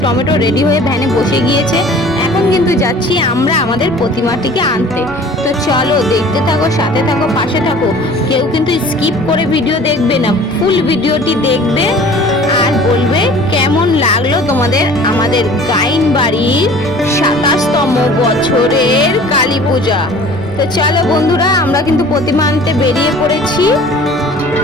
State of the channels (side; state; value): both; normal; correlation 0.47